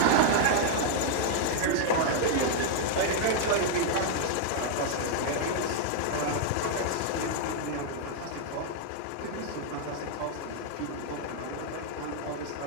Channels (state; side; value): different; both; correlation -0.01